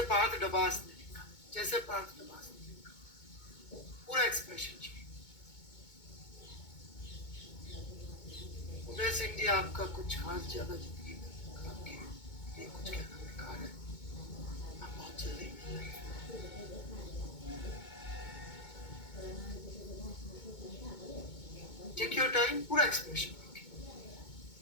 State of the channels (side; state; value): right; late; 2.2 ms